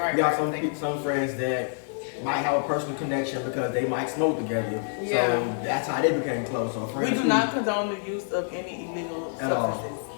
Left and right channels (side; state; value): right; silent; digital silence